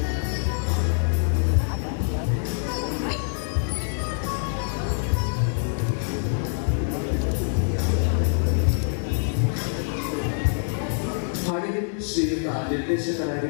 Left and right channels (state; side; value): silent; right; 62 dB below the other